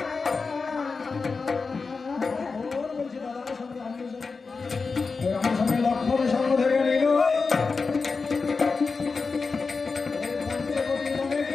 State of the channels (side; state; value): right; quieter; 4.5 dB